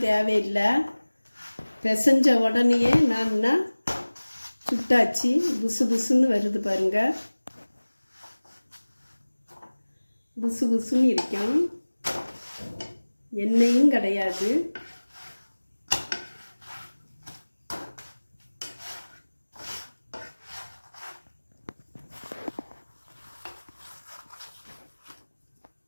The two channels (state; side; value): inverted; both; correlation -1.00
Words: தேவையில்லை. பிசைஞ்ச உடனே நான் சுட்டாச்சு. புசு புசுன்னு வருது பாருங்க. புசு புசுன்னு இருக்கும். எண்ணெயும் கிடையாது.